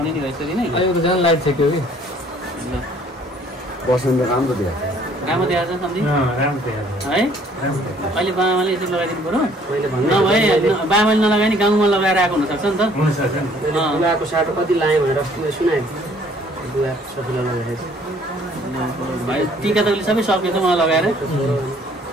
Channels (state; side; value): normal; both; correlation 0.59